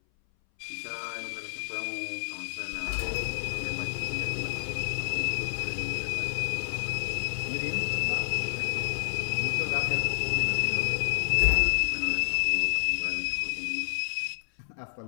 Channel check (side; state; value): right; silent; 58 dB below the other